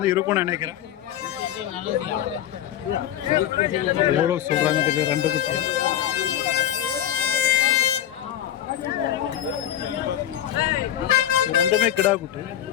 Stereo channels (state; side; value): quieter; right; 11.4 dB